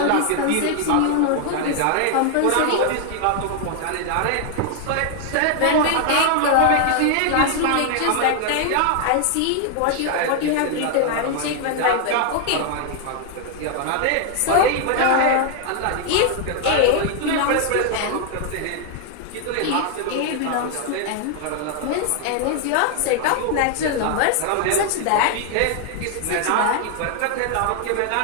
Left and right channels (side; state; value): both; different; correlation 0.00